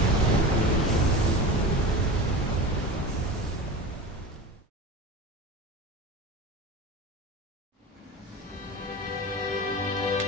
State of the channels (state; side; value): normal; both; correlation 0.30